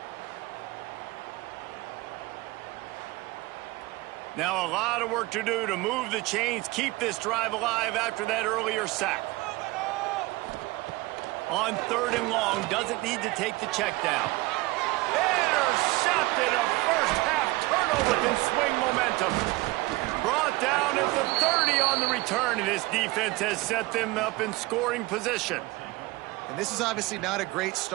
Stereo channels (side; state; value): left; quieter; 21.4 dB